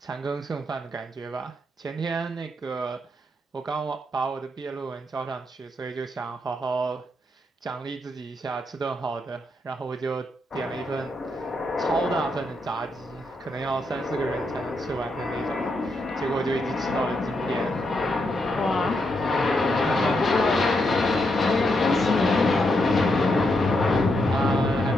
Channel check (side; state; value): both; normal; correlation 0.81